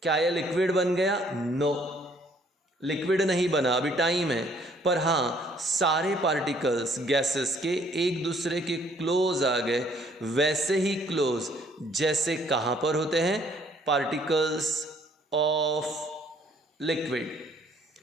क्या यह लिक्विड बन गया? नो, लिक्विड नहीं बना, अभी टाइम है। पर हाँ, सारे पार्टिकल्स गैसेस के एक दूसरे के क्लोज आ गए, वैसे ही क्लोज जैसे कहाँ पर होते हैं, particles of liquid.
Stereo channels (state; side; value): normal; both; correlation 0.62